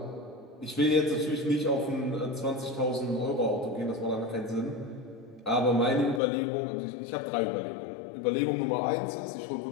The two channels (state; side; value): drops out; right; at 6.2 s